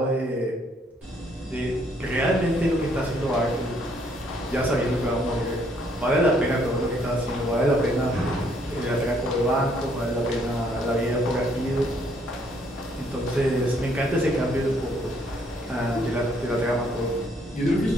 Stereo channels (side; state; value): both; normal; correlation 0.67